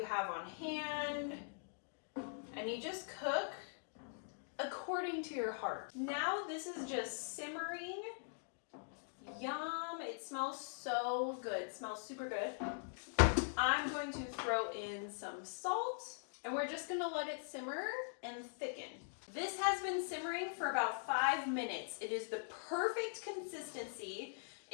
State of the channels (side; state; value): right; silent; digital silence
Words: have on hand, and you just cook according to your heart. Now this is just simmering. Yum, it smells so good, it smells super good. I'm going to throw in some salt and we're just gonna let it simmer and thicken. This has been simmering for about 5 minutes. It is the perfect consistency.